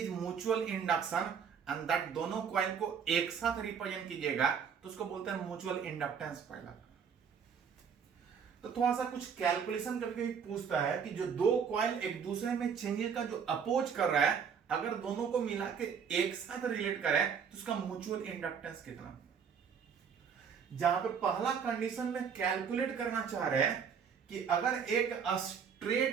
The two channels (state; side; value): quieter; left; 6.9 dB